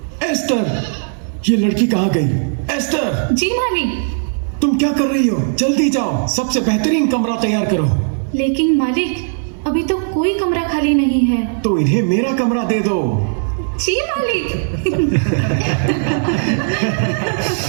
एस्टर, ये लड़की कहाँ गई? एस्टर। जी मालिक। तुम क्या कर रही हो? जल्दी जाओ, सबसे बेहतरीन कमरा तैयार करो। लेकिन मालिक, अभी तो कोई कमरा खाली नहीं है। तो इन्हें मेरा कमरा दे दो। जी मालिक।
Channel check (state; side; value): silent; left; digital silence